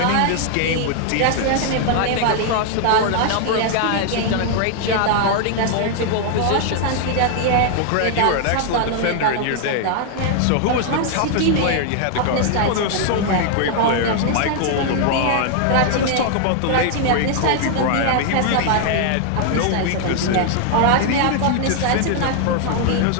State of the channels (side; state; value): both; different; correlation 0.00